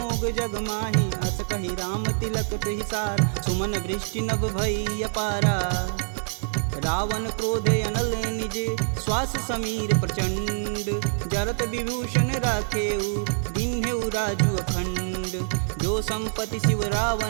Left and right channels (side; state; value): left; silent; digital silence